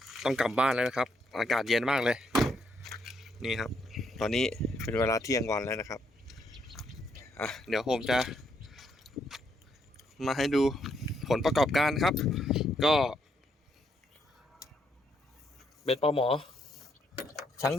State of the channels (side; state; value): both; normal; correlation 0.75